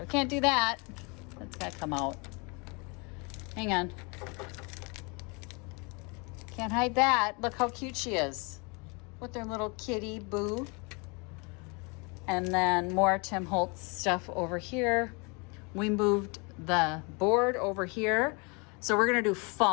We can't do that. That's got to come out. Hang on. Can't hide that. Look how cute she is. With their little kitty boo. And then more Tim Holtz stuff over here. We moved the board over here. So we're going to do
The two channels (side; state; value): right; quieter; 30.8 dB